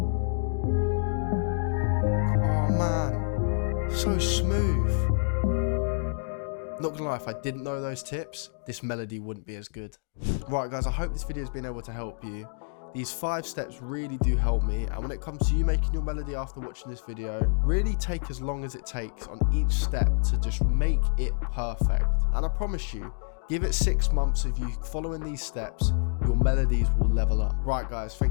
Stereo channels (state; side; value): silent; right; digital silence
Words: man, so smooth. Not gonna lie, if I didn't know those tips, this melody wouldn't be as good. Right guys, I hope this video has been able to help you. These 5 steps really do help me, and when it comes to you making your melody after watching this video, really take as long as it takes on each step to just make it perfect. And I promise you, give it 6 months of you following these steps, your melodies will level up. Right guys,